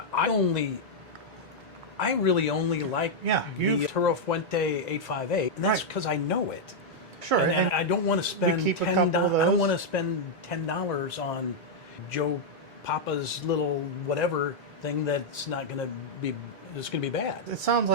really only like the Toro Fuente 858, and that's because I know it. Sure. And I don't want to spend keep a couple of those. I don't want to spend $10 on Joe Papa's little whatever thing that's not going to be. It's going to be bad. It sounds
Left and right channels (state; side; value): normal; both; correlation -0.04